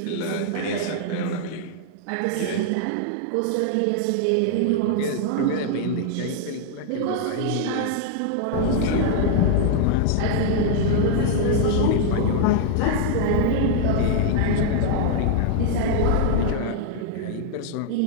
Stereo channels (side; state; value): both; different; correlation -0.01